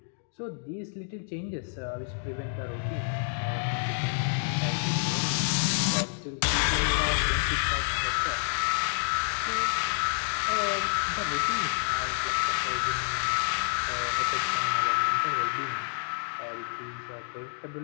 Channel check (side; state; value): right; silent; digital silence